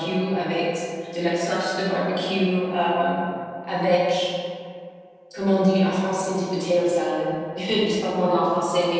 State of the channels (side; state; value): both; identical; correlation 1.00